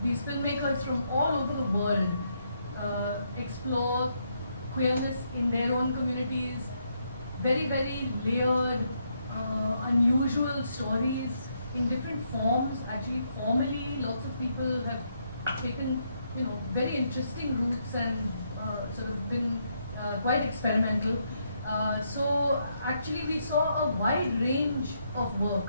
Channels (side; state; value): both; inverted; correlation -0.77